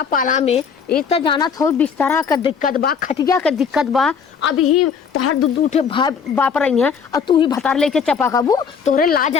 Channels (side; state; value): right; quieter; 6.3 dB